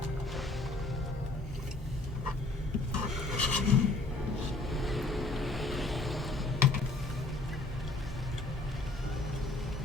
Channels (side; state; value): right; quieter; 3.1 dB